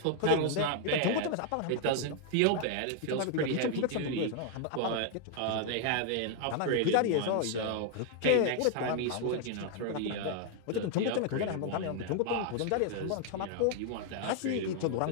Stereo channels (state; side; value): different; both; correlation 0.00